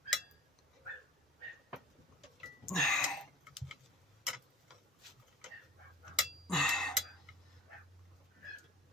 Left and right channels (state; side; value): normal; both; correlation 0.41